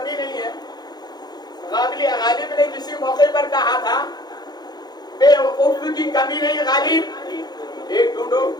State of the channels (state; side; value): late; right; 0.20 ms